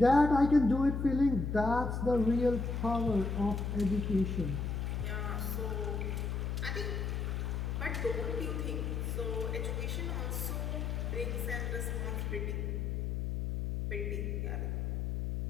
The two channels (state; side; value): noise; left; hum, 1 dB below the sound